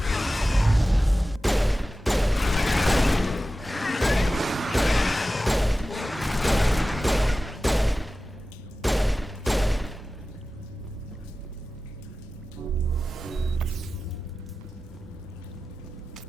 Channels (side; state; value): both; normal; correlation 0.95